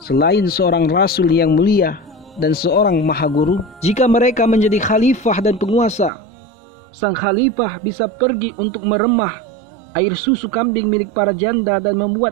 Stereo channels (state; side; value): drops out; left; at 6.1 s